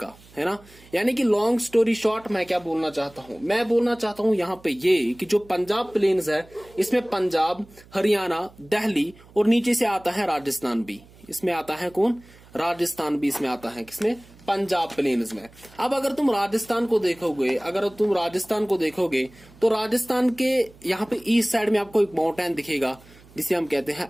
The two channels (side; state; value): right; noise; hum, 25 dB below the sound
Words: है ना। यानी कि लॉन्ग स्टोरी शॉर्ट, मैं क्या बोलना चाहता हूँ? मैं बोलना चाहता हूँ यहाँ पे ये कि जो पंजाब प्लेन्स है, इसमें पंजाब, हरियाणा, दिल्ली और नीचे से आता है राजस्थान भी। इसमें आता है कौन? राजस्थान भी इसमें आता है। किसमें? पंजाब प्लेन्स में। अब अगर तुम राजस्थान को देखोगे, तो राजस्थान के यहाँ पे ईस्ट साइड में आपको एक माउंटेन दिखेगा, जिसे हम कहते हैं